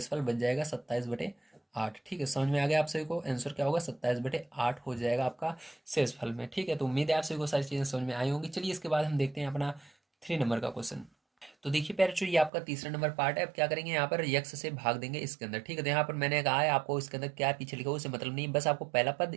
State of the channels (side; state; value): left; drops out; at 12.5 s